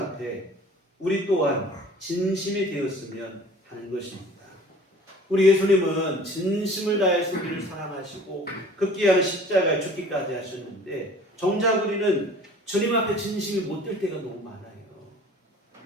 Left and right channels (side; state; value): both; normal; correlation 0.47